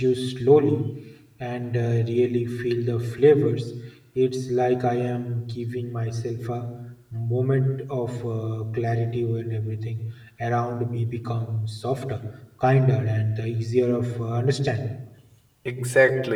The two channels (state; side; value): identical; both; correlation 1.00